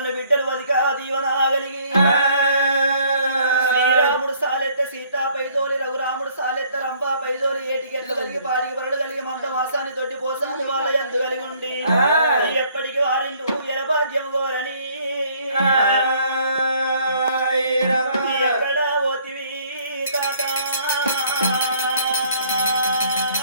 బిడ్డలు వదిక దీవన కలిగి శ్రీరాముడు సాలెత్త సీతా పైదోలి రఘురాముడు సాలెత్త రంభా పైదోలి ఏటికెట్లు కలిగి పాటికి పరుడు కలిగి మంద మాసాన్ని తొట్టి పోసాని వాళ్ళ ఎందు కలిగి ఉండి ఎప్పటికి వారిండు ఎలభాగ్యం గోరని ఎక్కడ పోతివి తాత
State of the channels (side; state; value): both; inverted; correlation -0.61